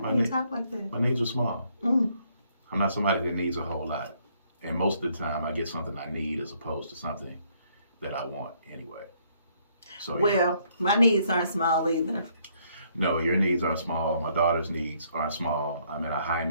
when you talk like that. My needs are small. I'm not somebody that needs a whole lot. And most of the time, I get something I need as opposed to something that I want anyway. So, well, my needs aren't small either. No, your needs aren't small. My daughter's needs aren't small. I'm in a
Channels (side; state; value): both; inverted; correlation -0.68